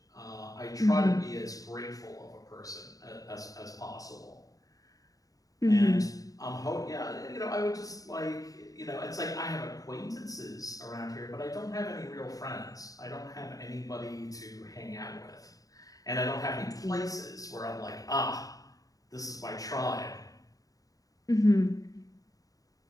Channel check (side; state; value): right; late; 0.17 ms